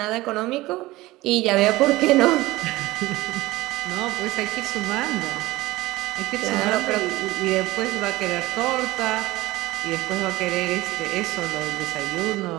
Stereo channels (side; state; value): left; quieter; 18.8 dB